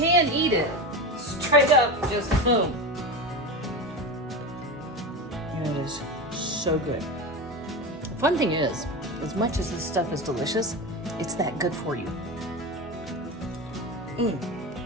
eat it straight up, just boom. And it is so good. The fun thing is, as much as this stuff is delicious, it's that good for you.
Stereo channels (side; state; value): both; normal; correlation 0.23